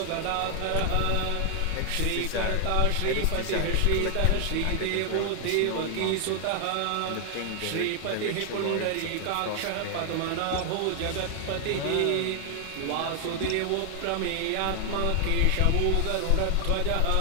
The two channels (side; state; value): both; different; correlation 0.00